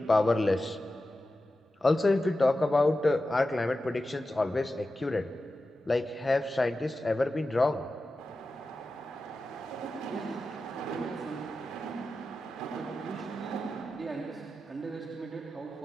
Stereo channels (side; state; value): both; normal; correlation 0.93